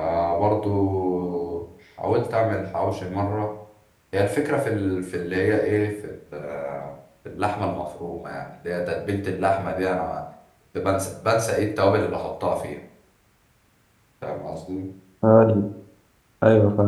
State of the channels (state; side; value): identical; both; correlation 1.00